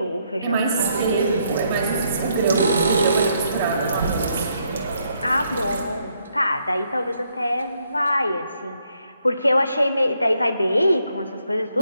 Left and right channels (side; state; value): both; inverted; correlation -0.74